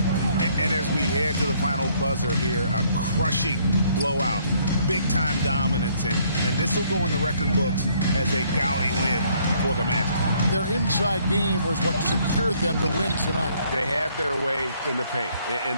And as we head to the final buzzer here, a crushing blowout. Big-time dominance, and this will go in the record books as a gaudy win for the Magic. Their inside game was what secured them to win tonight. They had their way in the paint,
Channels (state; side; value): inverted; both; correlation -0.65